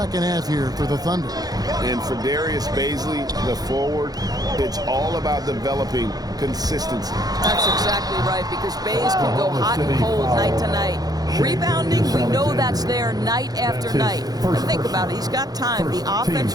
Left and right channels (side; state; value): left; late; 0.19 ms